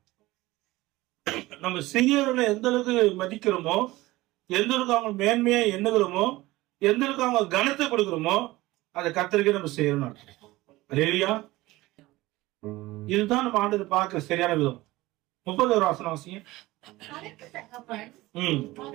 நம்ம சிறியவர்களை எந்த அளவுக்கு மதிக்கிறோமோ, எந்த அளவுக்கு அவங்க மேன்மையா எண்ணுகிறோமோ, எந்த அளவுக்கு அவங்க கனத்தை கொடுக்கிறோமோ, அதை கர்த்தருக்கே நம்ம செய்யணும். அல்லேலூயா. இதுதான் நம்ம ஆண்டு பார்க்க சரியான விதம். 30 வசனம் வாசிங்க. அதற்கு தகப்பன்,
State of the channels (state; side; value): quieter; left; 18.9 dB